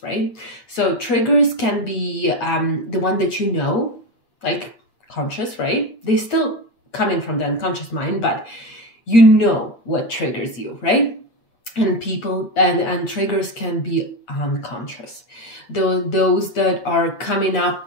right? So triggers can be the one that you know, like conscious, right? They still coming from the unconscious mind, but you know what triggers you, right? And people and triggers can be unconscious. Those that are coming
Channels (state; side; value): late; right; 8.6 ms